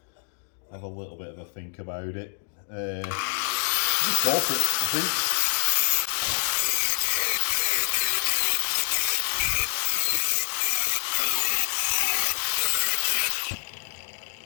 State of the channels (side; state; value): right; silent; digital silence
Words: have a little bit of a think about it. Just go for it, I think.